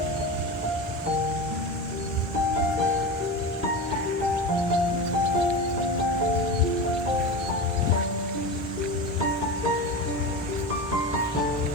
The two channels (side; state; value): both; normal; correlation 0.25